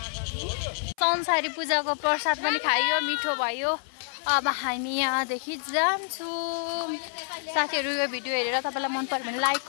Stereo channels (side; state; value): right; silent; 56 dB below the other